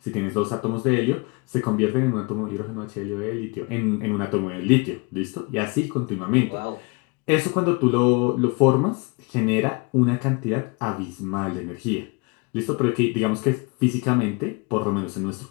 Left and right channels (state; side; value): quieter; right; 29.7 dB